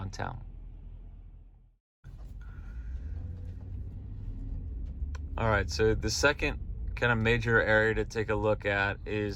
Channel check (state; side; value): identical; both; correlation 1.00